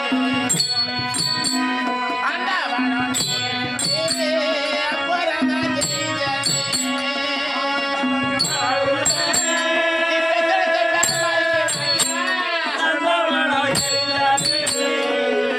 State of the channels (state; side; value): identical; both; correlation 1.00